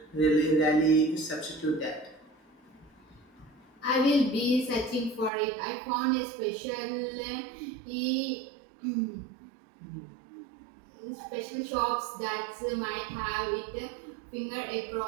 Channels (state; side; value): drops out; left; at 5.3 s